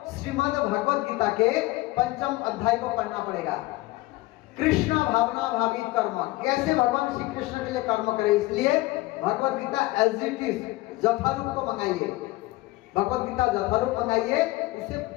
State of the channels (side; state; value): right; quieter; 19.8 dB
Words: श्रीमद् भगवद गीता के 5वें अध्याय को पढ़ना पड़ेगा। कृष्ण भावना भावित कर्म, कैसे भगवान श्री कृष्ण के लिए कर्म करें। इसलिए Bhagavad Gita as it is यथारूप को मंगाइए, भगवद गीता यथारूप मंगाइए, उसे